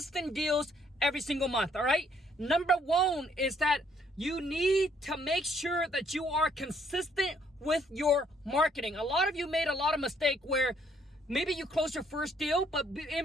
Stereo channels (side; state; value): both; normal; correlation 0.66